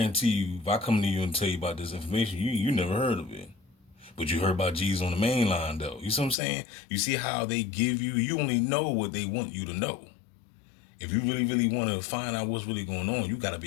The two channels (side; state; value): right; drops out; at 6.4 s